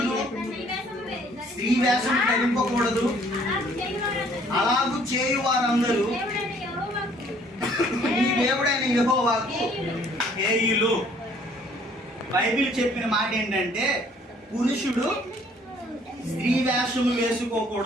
స్త్రీ వేషం ధరింపకూడదు, అలాగూ చేయు వారందరూ నీ దేవుడైన యెహోవాకు హేయులు. బైబిల్ చెప్పిన మాట ఏంటంటే పురుషుడు స్త్రీ వేషము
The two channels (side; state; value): both; normal; correlation 0.60